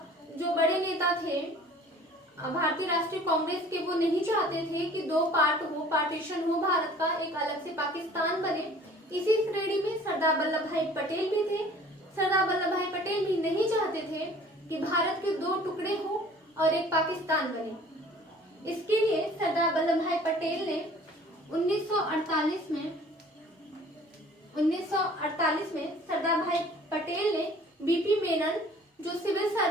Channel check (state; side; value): normal; both; correlation 0.50